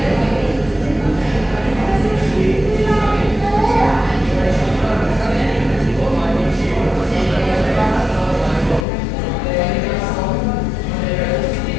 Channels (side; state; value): right; drops out; at 8.8 s